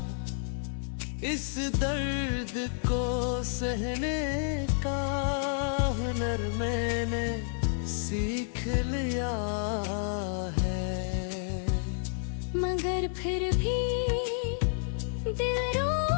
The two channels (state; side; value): silent; right; digital silence